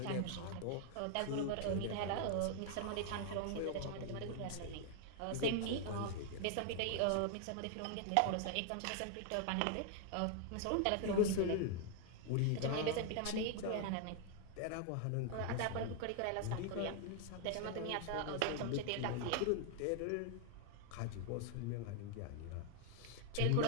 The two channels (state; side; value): different; both; correlation 0.00